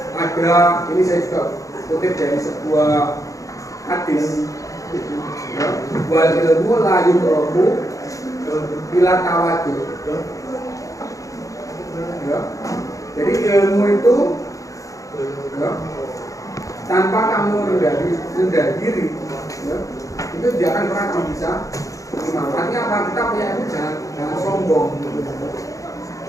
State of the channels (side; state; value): right; late; 0.16 ms